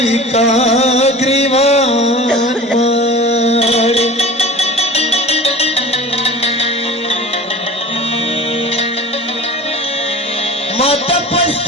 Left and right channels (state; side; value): normal; both; correlation 0.38